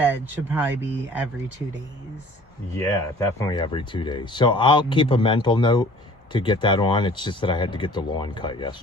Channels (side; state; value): both; normal; correlation 0.50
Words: should probably be every 2 days. Yeah, definitely every 2 days. So I'll keep a mental note to get that on. It's just that I had to get the lawn cut